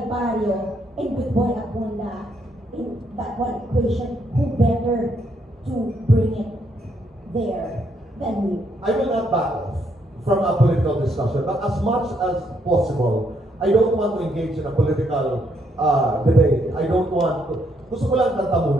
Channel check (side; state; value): both; normal; correlation 0.74